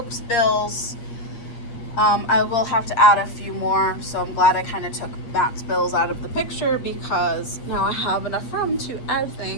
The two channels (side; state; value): right; late; 8.5 ms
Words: bills. I will have to add a few more, so I'm glad I kind of took Matt's bills out of the picture because now I have enough room to add